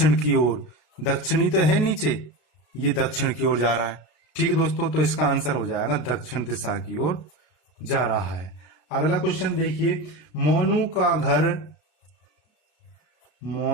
की ओर। दक्षिणी तो है नीचे, ये दक्षिण की ओर जा रहा है। ठीक है दोस्तों, तो इसका आंसर हो जाएगा दक्षिण दिशा की ओर जा रहा है। अगला क्वेश्चन देखिए, मोनू का घर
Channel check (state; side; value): late; right; 33 ms